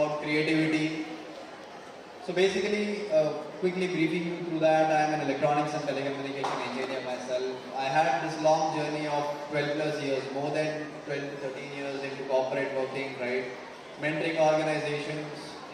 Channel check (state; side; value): identical; both; correlation 1.00